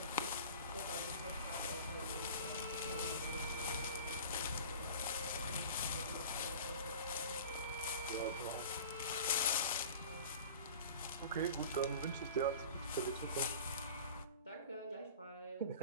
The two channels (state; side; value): inverted; both; correlation -0.39